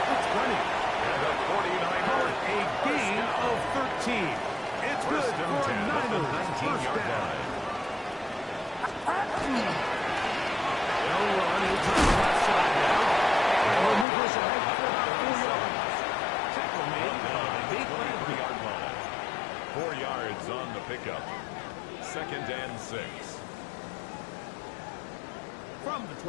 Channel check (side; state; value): right; drops out; at 14.1 s